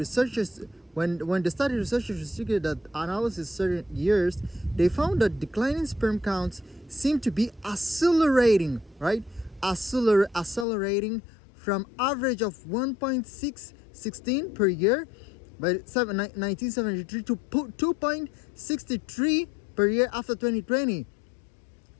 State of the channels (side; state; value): right; drops out; at 10.7 s